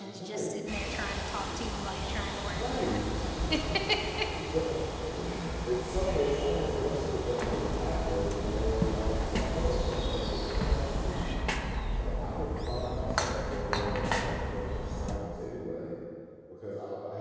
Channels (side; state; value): both; identical; correlation 1.00